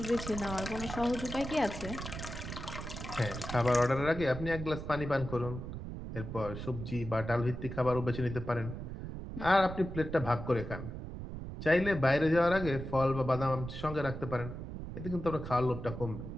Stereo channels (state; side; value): noise; right; rumble, 8 dB below the sound